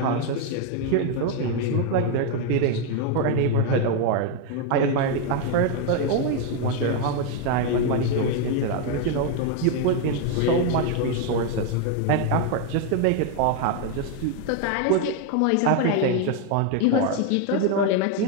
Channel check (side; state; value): both; different; correlation 0.01